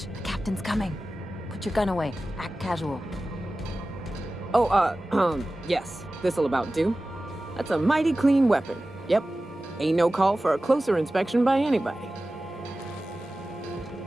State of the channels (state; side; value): normal; both; correlation 0.96